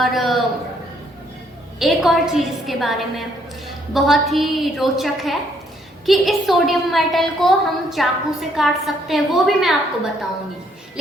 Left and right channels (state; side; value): normal; both; correlation 0.69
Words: एक और चीज़ इसके बारे में बहुत ही रोचक है कि इस सोडियम मेटल को हम चाकू से काट सकते हैं, वो भी मैं आपको बताऊंगी।